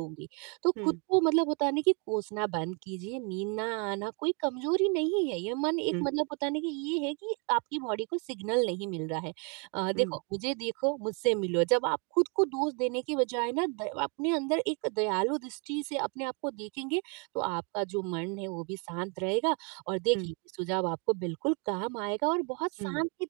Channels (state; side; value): quieter; left; 35.6 dB